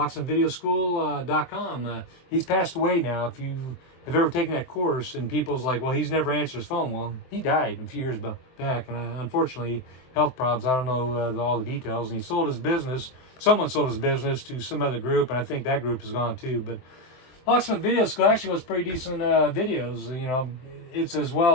he's passed away now. If you have ever taken that course, and people's like, well, he's never answered his phone. Well, he died a few years back, and unfortunately, health problems. I don't know all the details. And he sold his business. Someone sold his business to some other group, and I think that group is gone too. But Locksmith Video School actually was pretty decent videos. You know, it's as well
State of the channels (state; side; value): late; right; 23 ms